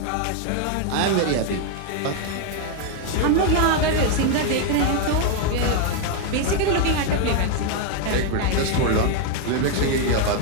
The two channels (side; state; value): both; different; correlation 0.00